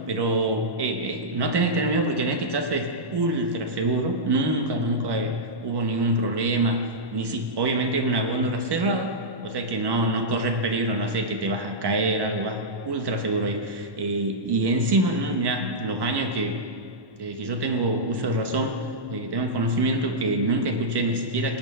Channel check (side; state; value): left; late; 1.1 ms